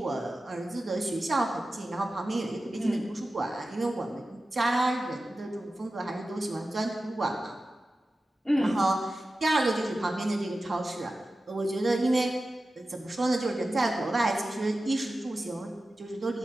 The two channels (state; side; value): normal; both; correlation 0.94